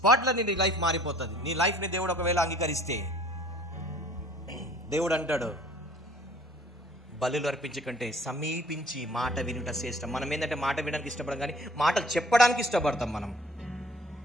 నీ లైఫ్ మారిపోతుంది. నీ లైఫ్ని దేవుడు ఒకవేళ అంగీకరిస్తే దేవుడు అంటాడు, బలులు అర్పించకంటే సమీపించి మాట వినుట శ్రేష్టం. మనం ఏంటంటే మాట వినడానికి ఇష్టపడం, కానీ మాటలు చెప్పడానికి ఇష్టపడతాం మనం.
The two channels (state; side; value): normal; both; correlation 0.53